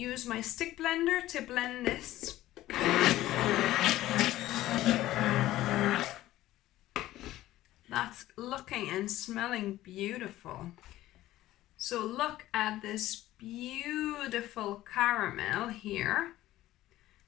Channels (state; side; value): quieter; right; 15.2 dB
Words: my stick blender to blend this. That's looking and smelling beautiful. So look at this beautiful caramel here.